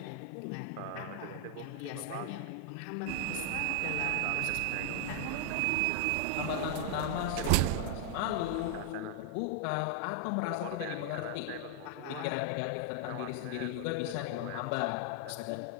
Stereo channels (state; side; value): different; both; correlation 0.00